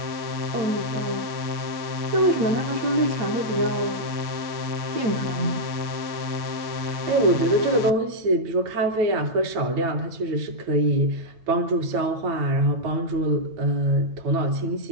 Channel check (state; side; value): late; left; 8.8 ms